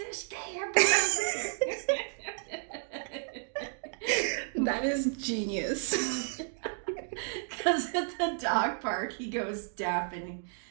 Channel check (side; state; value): left; silent; 56 dB below the other